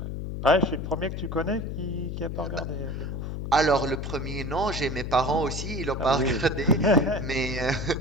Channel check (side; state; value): left; noise; hum, 5 dB below the sound